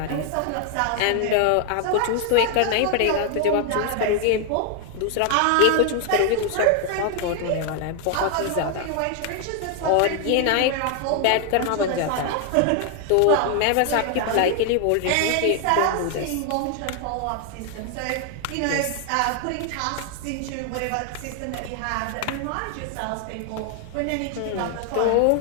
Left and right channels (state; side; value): different; both; correlation 0.00